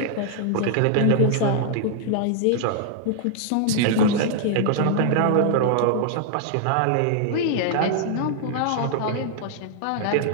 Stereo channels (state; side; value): different; both; correlation -0.01